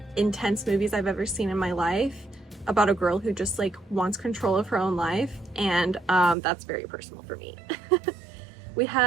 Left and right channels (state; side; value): drops out; left; at 6.4 s